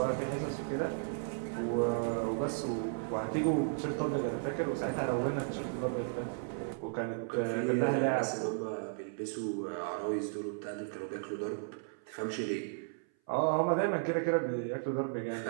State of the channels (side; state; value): left; silent; 55 dB below the other